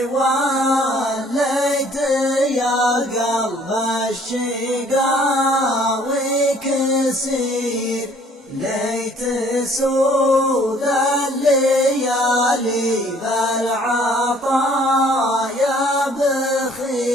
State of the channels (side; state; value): both; normal; correlation 0.58